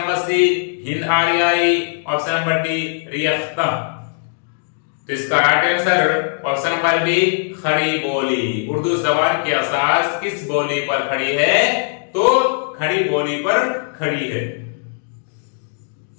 C Hind Aryai, option number D Rekhta. तो इसका right answer option number B Khari Boli. Urdu जबान की असास किस बोली पर खड़ी है तो खड़ी बोली पर खड़ी है।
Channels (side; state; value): right; silent; digital silence